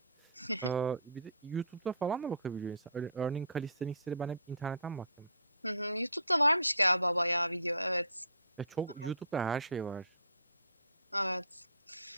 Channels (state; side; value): inverted; both; correlation -0.50